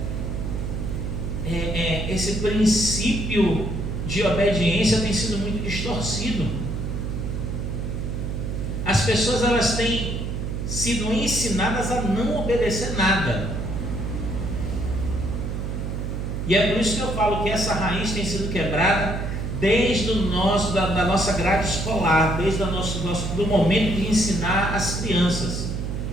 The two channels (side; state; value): right; noise; hum, 3 dB below the sound